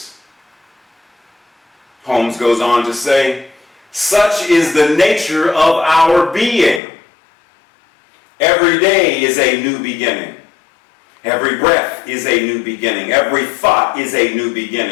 Holmes goes on to say, such is the nature of our being. Every day is a new beginning. Every breath is a new beginning. Every thought is a new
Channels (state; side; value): drops out; right; at 6.8 s